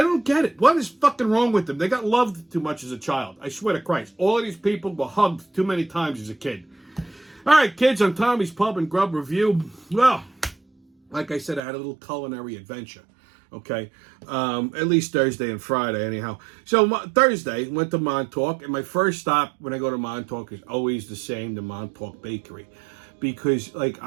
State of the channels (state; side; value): drops out; left; at 11.6 s